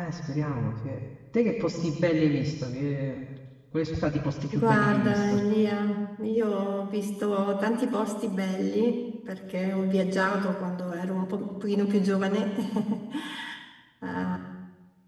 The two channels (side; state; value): both; identical; correlation 1.00